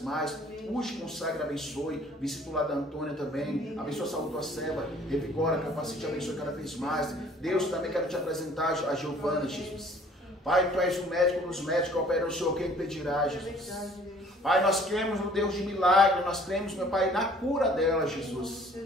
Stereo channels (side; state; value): both; normal; correlation 0.55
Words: mais. Use, consagra, abençoe. Visita o lar da Antônia também. Abençoe a saúde da tua serva. Revigora, capacite, abençoe cada vez mais. Deus, também quero te apresentar a Giovana, Jesus. Pai, tu és o médico dos médicos, opera o Senhor, quem impedirá, Jesus. Pai, nós cremos no Deus de milagre, nós cremos, meu Pai, na cura dela, Jesus.